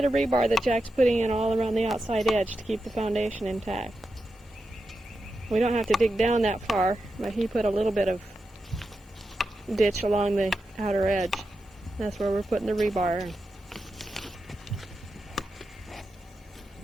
of rebar that Jack's putting in all around the outside edge to keep the foundation intact. We don't have to dig down that far, but he put a little bit of ditch along the outer edge. That's where we're putting the rebar in.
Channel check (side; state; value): both; normal; correlation 0.89